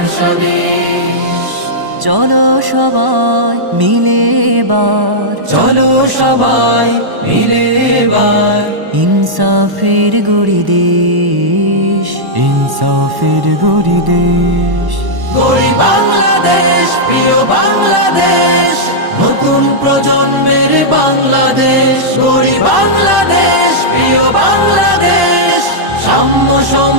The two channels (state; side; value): late; left; 1.1 ms